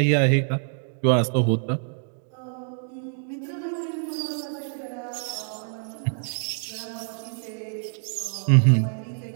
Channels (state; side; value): silent; left; digital silence